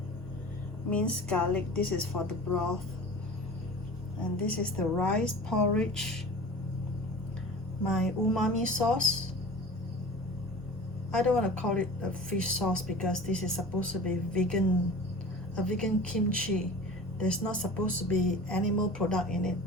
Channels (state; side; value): noise; right; hum, 20 dB below the sound